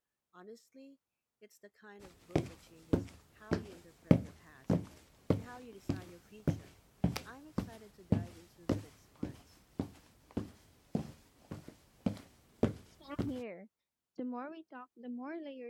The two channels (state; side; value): identical; both; correlation 1.00